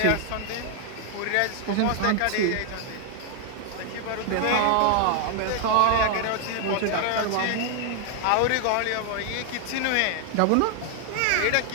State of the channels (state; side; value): different; both; correlation 0.00